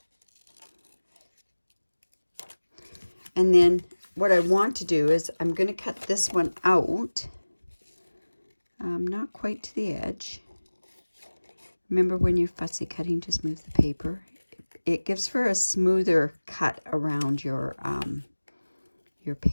And then what I want to do is I'm going to cut this one out, not quite to the edge. Remember, when you're fussy cutting, just move the paper. It gives for a smoother cut around your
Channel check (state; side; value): inverted; both; correlation -1.00